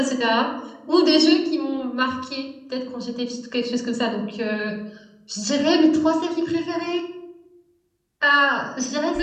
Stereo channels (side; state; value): both; identical; correlation 1.00